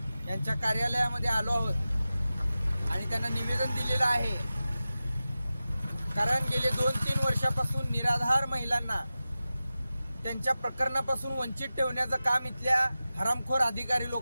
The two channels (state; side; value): inverted; both; correlation -0.95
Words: यांच्या कार्यालयामध्ये आलो आहोत आणि त्यांना निवेदन दिलेलं आहे। कारण गेले 2-3 वर्षापासून निराधार महिलांना त्यांच्या प्रकरणापासून वंचित ठेवण्याचं काम इथल्या हरामखोर अधिकारी